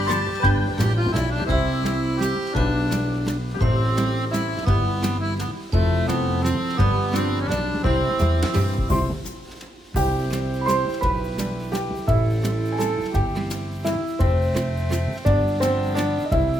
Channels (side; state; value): both; normal; correlation 0.83